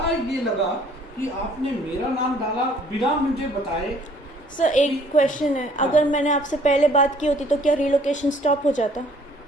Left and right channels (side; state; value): both; normal; correlation 0.58